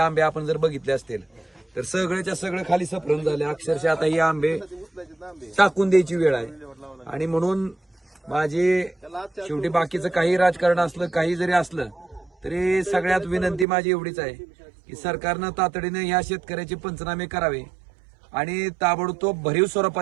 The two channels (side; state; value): left; drops out; at 13.7 s